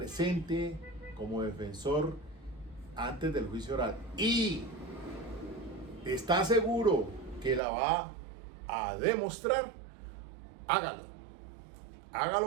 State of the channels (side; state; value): left; drops out; at 7.6 s